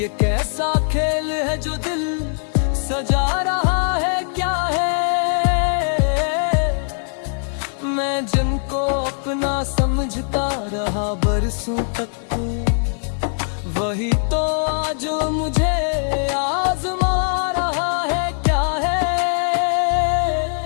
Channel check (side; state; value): right; silent; 65 dB below the other